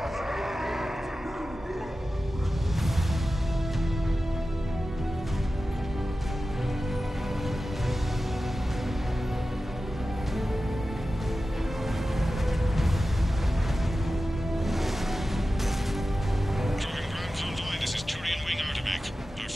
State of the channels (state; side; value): normal; both; correlation 0.94